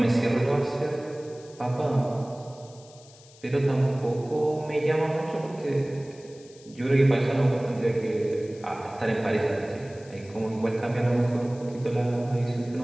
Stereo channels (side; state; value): left; noise; hiss, 24 dB below the sound